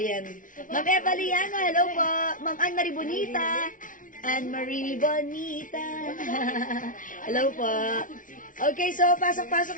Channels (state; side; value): late; right; 0.38 ms